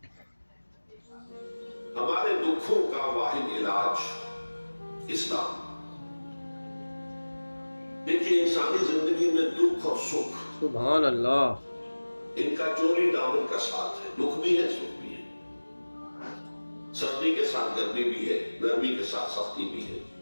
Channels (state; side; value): inverted; both; correlation -1.00